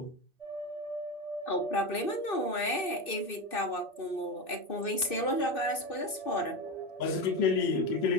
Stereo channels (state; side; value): late; right; 2.6 ms